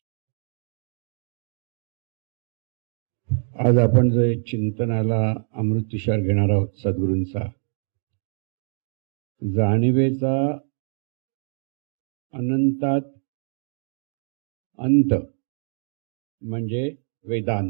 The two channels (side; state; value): left; silent; digital silence